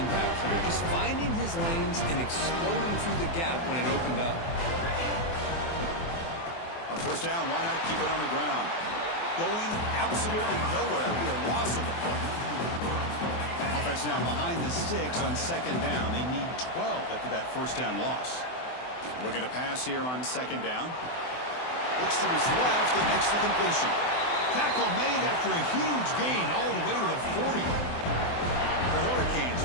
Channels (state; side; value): late; right; 24 ms